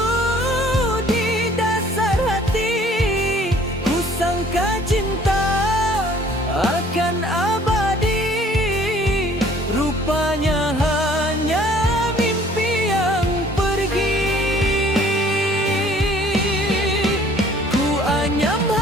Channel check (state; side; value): normal; both; correlation 0.55